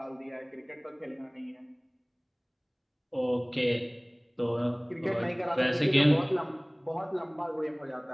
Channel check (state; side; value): identical; both; correlation 1.00